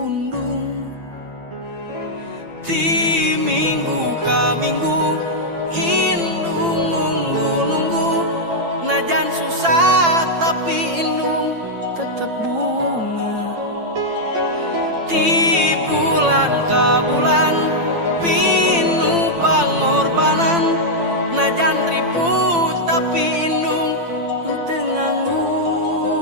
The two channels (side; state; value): left; late; 8.9 ms